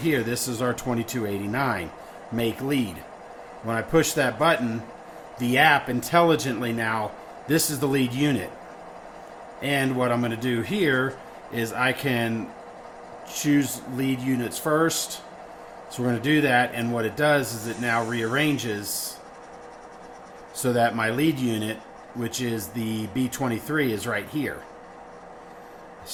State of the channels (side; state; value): both; identical; correlation 1.00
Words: This is our 2289, make lead. When I push that button, the app intelligently now, this is the lead unit. And what I'm going to do here is I can choose lead units first, So we're going to do that, and what it does is it now rearranges so that my lead unit, which is the B23, is right here.